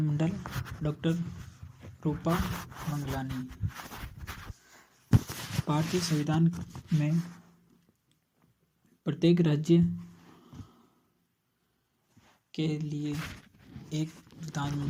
डॉक्टर रूपा मंगलानी। भारतीय संविधान में प्रत्येक राज्य के लिए एक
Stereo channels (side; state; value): both; identical; correlation 1.00